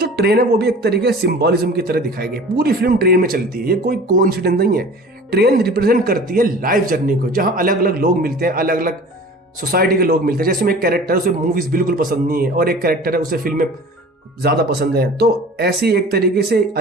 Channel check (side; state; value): both; normal; correlation 0.42